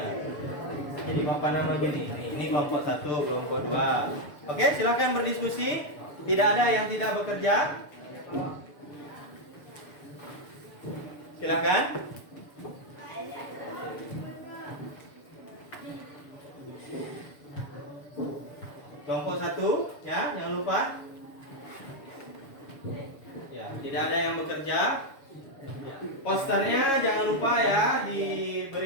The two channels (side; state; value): right; late; 6.9 ms